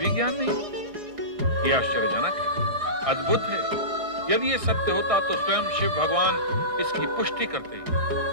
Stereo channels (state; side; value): late; left; 1.6 ms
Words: ज्ञान नहीं। यह आश्चर्यजनक है, अद्भुत है। यदि ये सत्य होता तो स्वयं शिव भगवान इसकी पुष्टि करते,